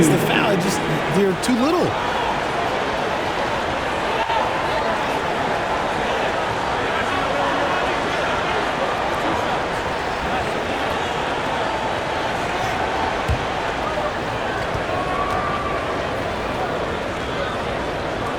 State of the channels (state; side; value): identical; both; correlation 1.00